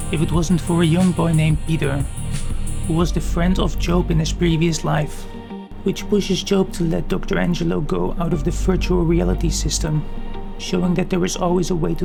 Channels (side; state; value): both; identical; correlation 1.00